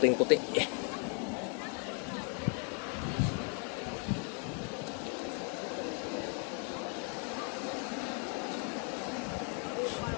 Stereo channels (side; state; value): right; quieter; 37.0 dB